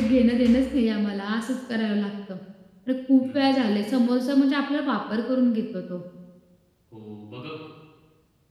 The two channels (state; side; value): identical; both; correlation 1.00